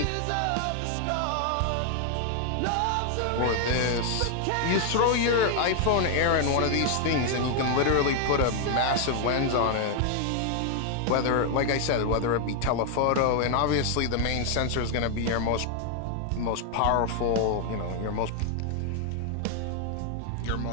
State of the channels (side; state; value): both; different; correlation 0.00